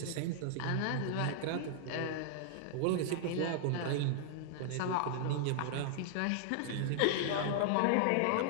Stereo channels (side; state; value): both; different; correlation -0.01